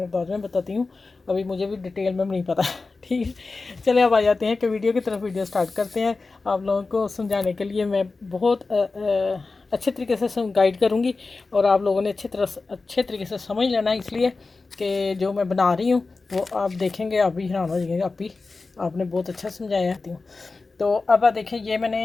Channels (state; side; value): quieter; right; 3.8 dB